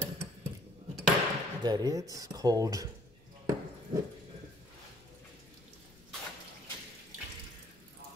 that it's cold.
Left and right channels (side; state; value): left; noise; rumble, 26 dB below the sound